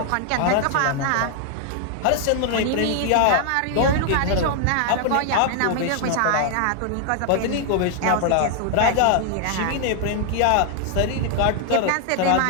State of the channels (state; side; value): different; both; correlation 0.00